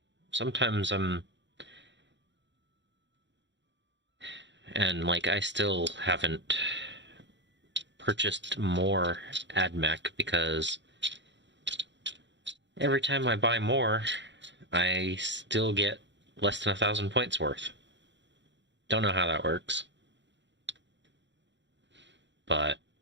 sometimes and like I still haven't purchased more AdMech because every time I buy more, I still get less than 1,000 points worth. Don't know how that works, but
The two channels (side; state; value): left; late; 0.52 ms